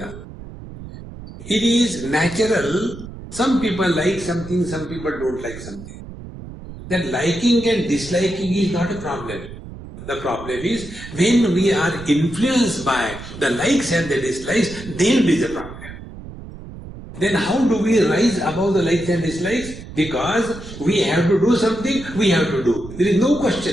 It is natural. Some people like something, some people don't like something. That liking and disliking is not a problem. The problem is when we are influenced by the likes and the dislikes, then it is a problem. Then how do we rise above the likes and dislikes? Because we have to do something, we have to do. There is no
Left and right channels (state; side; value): noise; right; rumble, 14 dB below the sound